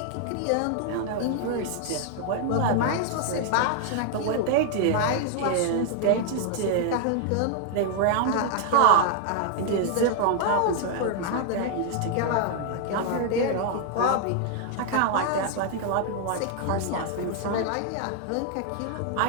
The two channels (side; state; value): both; different; correlation 0.00